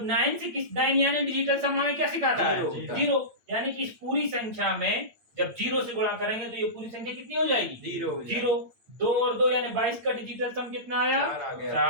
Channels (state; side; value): late; left; 8.8 ms